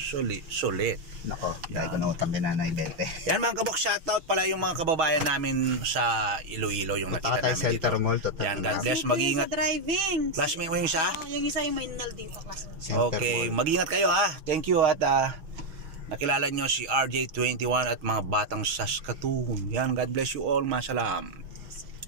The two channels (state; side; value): late; left; 6.2 ms